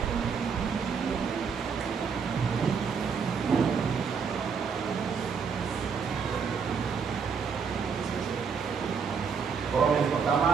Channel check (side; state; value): left; quieter; 6.0 dB